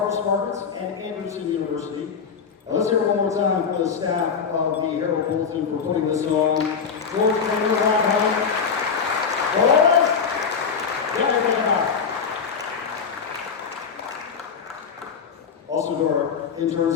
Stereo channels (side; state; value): right; quieter; 6.2 dB